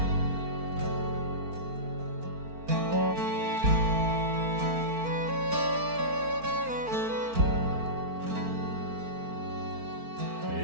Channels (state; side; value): late; left; 4.4 ms